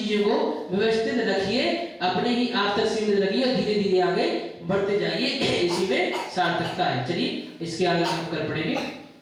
को व्यवस्थित रखिए, अपने ही आप तक सीमित रखिए और धीरे धीरे आगे बढ़ते जाइए। इसी में सार्थकता है। चलिए इसके आगे हम कर पड़ेंगे।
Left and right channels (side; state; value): both; identical; correlation 1.00